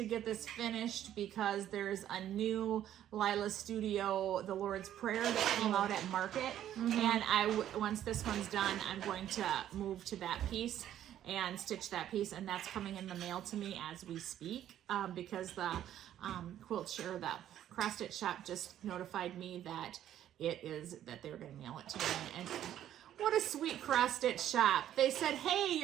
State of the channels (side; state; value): left; quieter; 11.4 dB